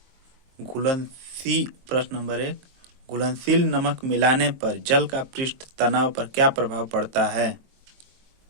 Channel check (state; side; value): late; left; 22 ms